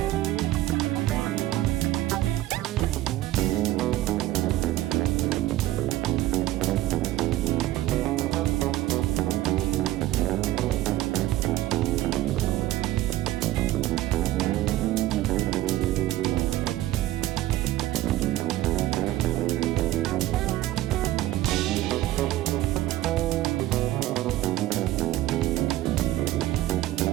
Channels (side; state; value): left; quieter; 15.3 dB